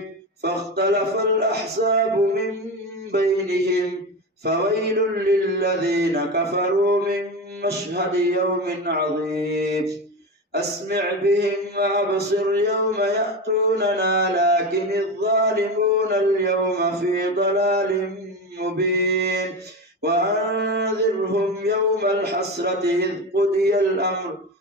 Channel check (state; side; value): normal; both; correlation 0.22